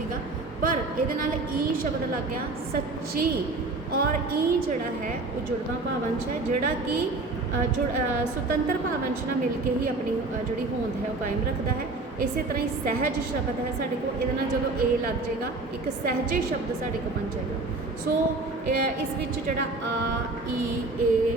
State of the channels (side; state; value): left; quieter; 3.3 dB